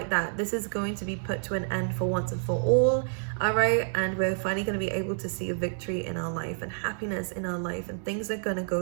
that. This is going to be put to an end for once and for all. All right. And we're finally going to be able to see a victory in our life and happiness in our life, and things are going to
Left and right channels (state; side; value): silent; left; digital silence